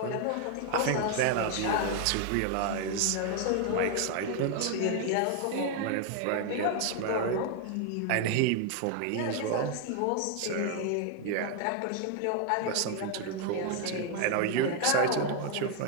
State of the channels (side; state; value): both; different; correlation 0.00